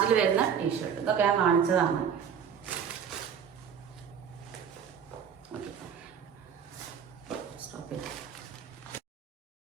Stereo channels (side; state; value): left; quieter; 7.6 dB